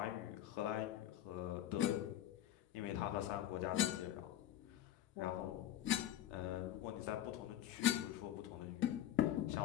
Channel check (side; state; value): right; quieter; 12.3 dB